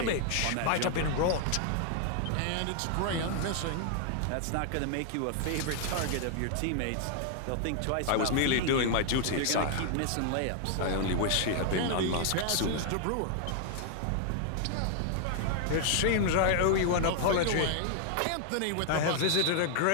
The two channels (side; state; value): both; different; correlation 0.00